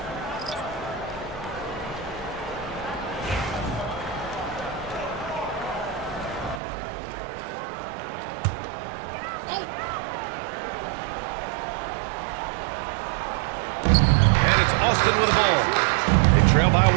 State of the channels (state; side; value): drops out; left; at 6.6 s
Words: Austin with the ball. They trail by 1.